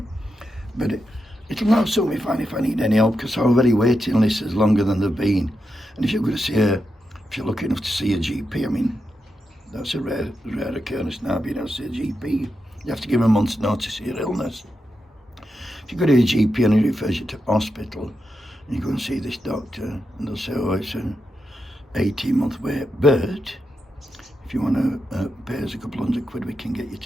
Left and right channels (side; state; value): both; normal; correlation 0.87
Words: But it'll not suit me fine if I need any help, because our very waiting list is longer than they've been. And if you're going to see if you're lucky enough to see a GP, I mean, that's a rare occurrence now, being able to see a GP. You have to give a month's notice of your illness. If you go to a GP and he refers you to hospital, and you go and see this doctor, and they'll say, oh, it's an 18-month wait, but if you want to pay us a couple £100, we can get you